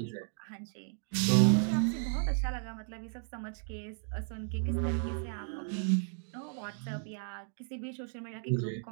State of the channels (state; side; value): silent; left; 55 dB below the other